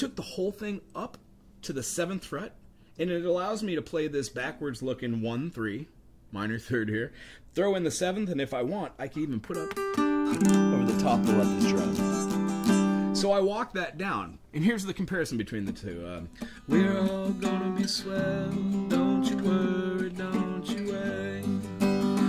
the whole thing up to the 7th fret, and it allows me to play this backwards looking 1, 3, minor 3rd here, throw in the 7th, and if I want, I can even put up over the top to let this drum. So I walked that down, and here's the comparison between the two. We're all gonna be swell, don't you worry, don't you worry.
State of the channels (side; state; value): both; identical; correlation 1.00